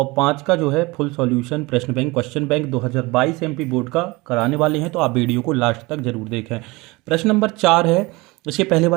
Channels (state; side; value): quieter; left; 23.5 dB